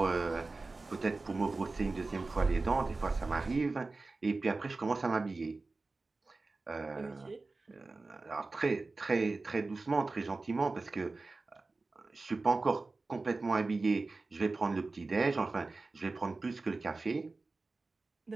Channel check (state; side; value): quieter; left; 3.6 dB